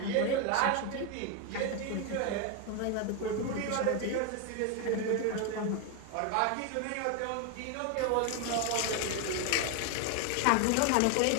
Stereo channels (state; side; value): different; both; correlation 0.01